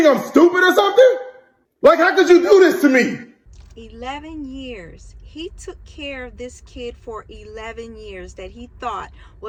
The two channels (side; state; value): both; identical; correlation 1.00